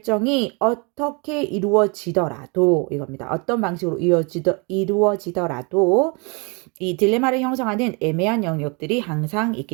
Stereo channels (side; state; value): left; quieter; 31.6 dB